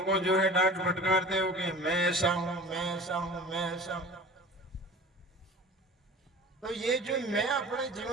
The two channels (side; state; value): both; normal; correlation 0.40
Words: को जो है डांट फटकारते हो कि मैं ऐसा हूं, मैं ऐसा हूं, मैं ऐसा हूं। तो ये जो मैं अपने